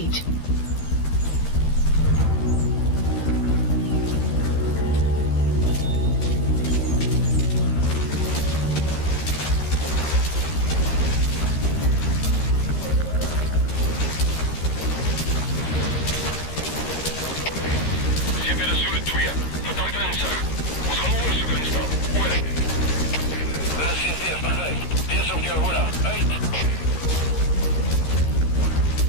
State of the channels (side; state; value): right; late; 13 ms